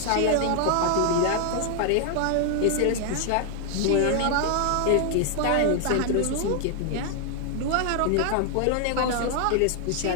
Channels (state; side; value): different; both; correlation 0.00